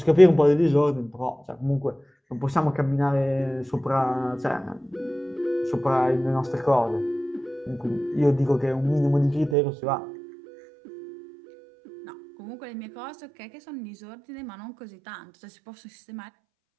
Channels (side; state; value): left; drops out; at 9.6 s